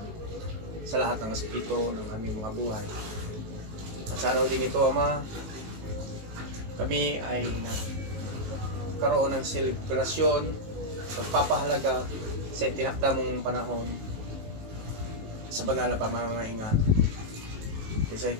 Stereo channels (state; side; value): late; left; 19 ms